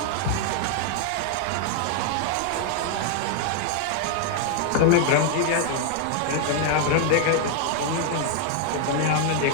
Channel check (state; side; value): different; both; correlation 0.00